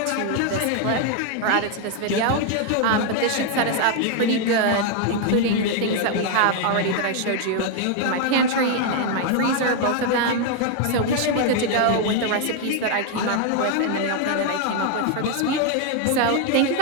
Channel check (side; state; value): both; different; correlation 0.00